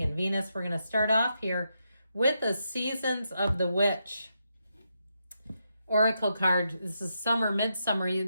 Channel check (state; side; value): inverted; both; correlation -0.83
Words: and Venus. We're going to start off here with the Seasons of the Witch oracle card. This is summer, midsummer.